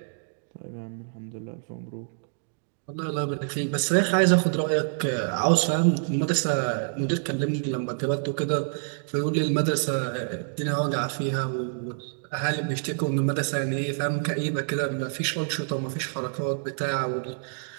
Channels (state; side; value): silent; left; digital silence